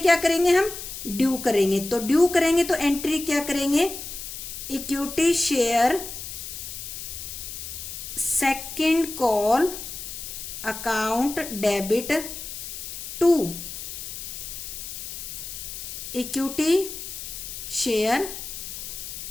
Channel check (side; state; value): left; noise; hiss, 9 dB below the sound